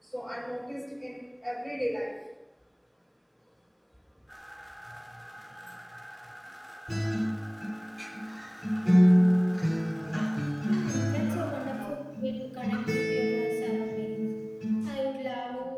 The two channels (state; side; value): identical; both; correlation 1.00